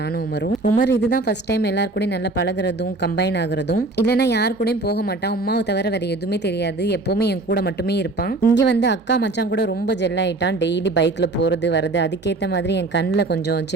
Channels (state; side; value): quieter; left; 3.1 dB